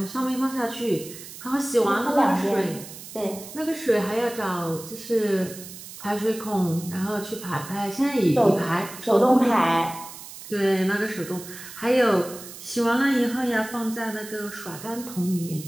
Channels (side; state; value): right; noise; hiss, 14 dB below the sound